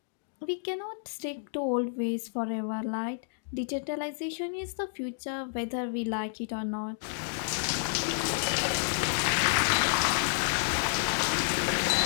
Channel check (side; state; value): right; silent; digital silence